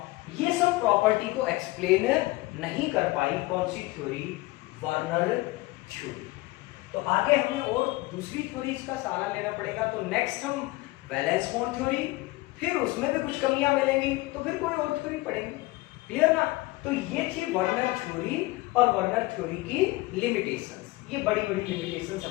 ये सब प्रॉपर्टी को एक्सप्लेन नहीं कर पाई कौन सी थ्योरी, वर्नर थ्योरी। तो आगे हमें और दूसरी थ्योरीज का सहारा लेना पड़ेगा। तो नेक्स्ट हम वैलेंस बॉन्ड थ्योरी, फिर उसमें भी कुछ कमियां मिलेंगी, तो फिर कोई और थ्योरी पढ़ेंगे। क्लियर ना? तो ये थी वर्नर थ्योरी और वर्नर थ्योरी की लिमिटेशंस। ये बड़ी बड़ी लिमिटेशंस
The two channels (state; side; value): quieter; right; 21.0 dB